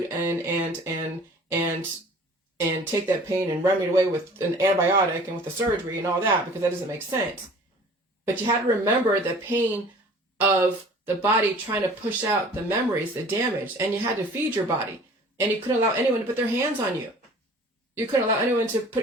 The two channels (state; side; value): normal; both; correlation 0.47